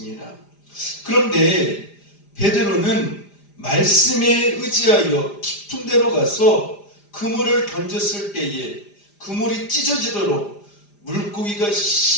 그런데 베드로는 말씀에 의지하여 깊은 데로 가서 그물을 던졌을 때에 그물이 찢어지도록 물고기가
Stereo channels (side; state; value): right; late; 4.9 ms